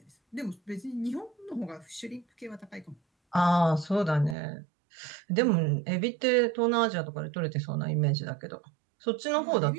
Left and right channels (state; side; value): drops out; left; at 4.4 s